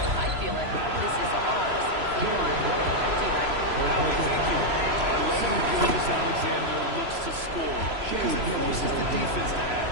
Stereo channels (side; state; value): left; late; 3.0 ms